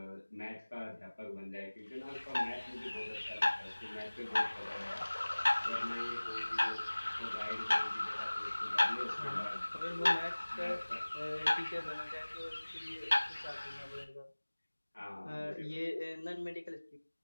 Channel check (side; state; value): both; inverted; correlation -1.00